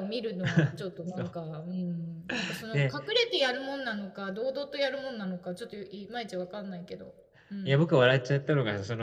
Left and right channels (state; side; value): identical; both; correlation 1.00